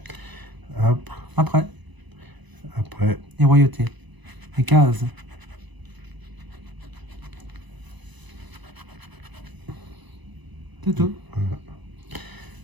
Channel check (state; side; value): late; left; 1.0 ms